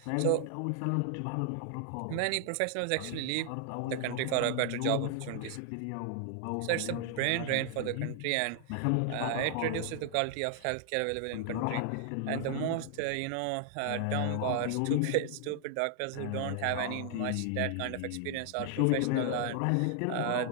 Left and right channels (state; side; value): different; both; correlation 0.00